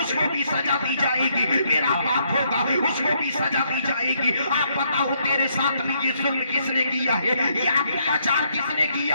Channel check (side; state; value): both; inverted; correlation -0.73